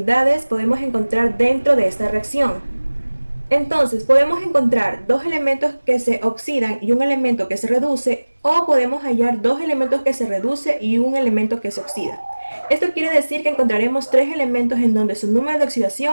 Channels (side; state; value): both; inverted; correlation -1.00